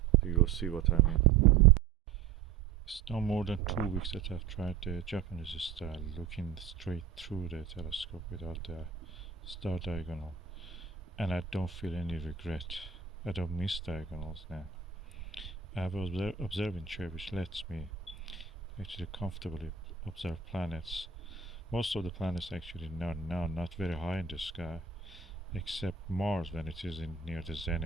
You'll see what I mean. It's no more than 2 weeks that I've tried the Japanese style, looking straight through the telescope without the star diagonal, and I don't feel any regret. I don't miss diagonals now. I have an observing chair which lets me actually comfortably observe planets Most of the planets actually not very high in the sky, except Mars when it is in near the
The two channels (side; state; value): left; quieter; 7.3 dB